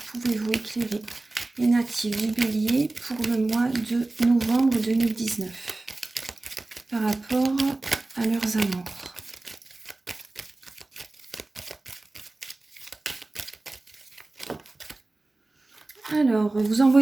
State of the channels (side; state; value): left; quieter; 3.0 dB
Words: pouvez-vous éclairer les natifs du bélier pour le mois de novembre 2019 par rapport à leurs amours? Alors, vous